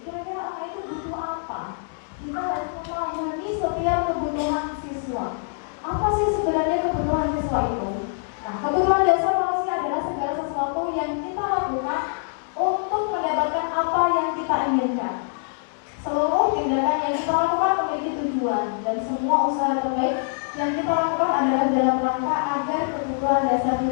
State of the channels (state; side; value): silent; right; digital silence